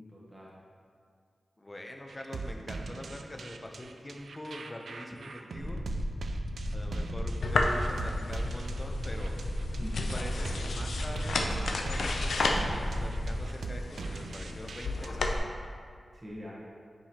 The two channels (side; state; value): both; normal; correlation 0.91